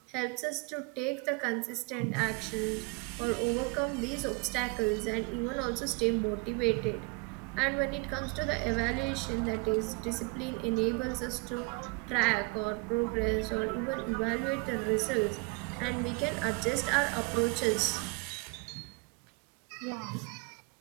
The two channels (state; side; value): quieter; left; 29.3 dB